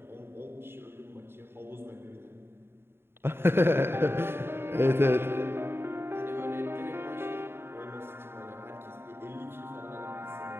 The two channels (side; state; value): left; late; 0.11 ms